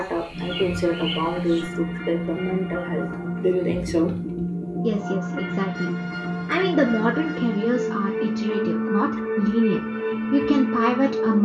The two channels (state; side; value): identical; both; correlation 1.00